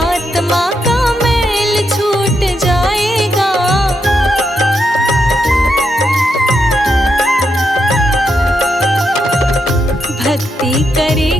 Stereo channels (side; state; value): both; normal; correlation 0.82